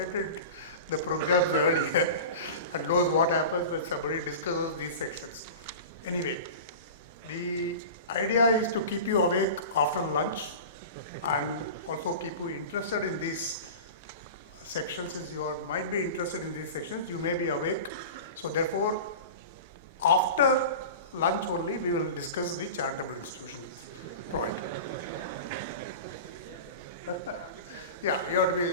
the programs earlier and knows what happens when somebody discusses these sections. Anyway, the idea is to keep you awake after lunch and also keep you interested in these sections. Since you might be interested in these sections, you may be awake. So therefore, after lunch only, we will discuss the charitable institution point. Yeah, you have to be,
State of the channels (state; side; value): inverted; both; correlation -0.32